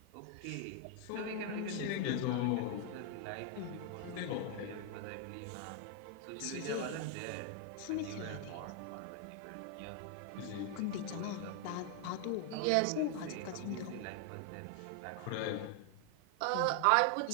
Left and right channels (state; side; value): different; both; correlation 0.00